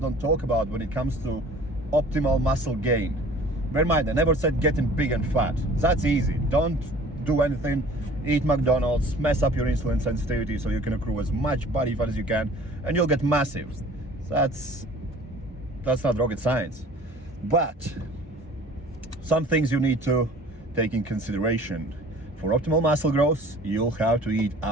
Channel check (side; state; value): both; normal; correlation 0.48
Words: talk about when it comes to optimal muscle gain. Bear in mind, I never said getting big and fat. That's easy. Don't do anything, eat McDonald's, mess up your insulin sensitivity so you can accrue as much body fat as you can, and you'll get massive. That's not rocket science. But some things you need to take in consideration. For optimal muscle growth, you'll have to eat